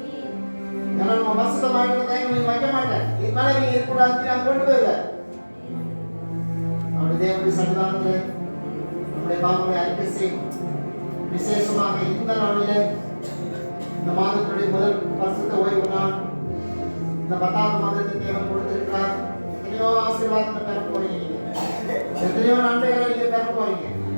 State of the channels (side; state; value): both; inverted; correlation -1.00